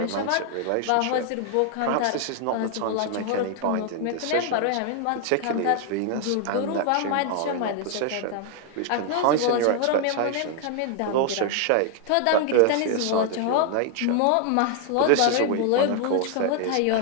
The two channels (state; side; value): different; both; correlation 0.00